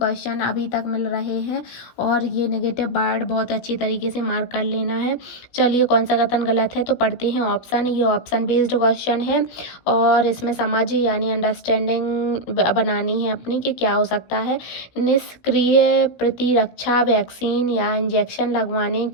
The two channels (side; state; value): right; late; 16 ms